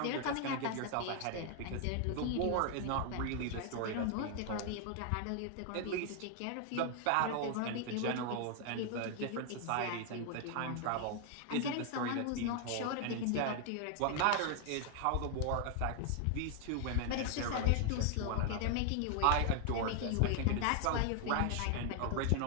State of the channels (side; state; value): both; different; correlation 0.00